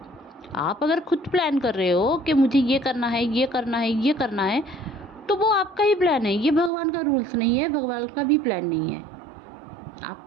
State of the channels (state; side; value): drops out; left; at 6.7 s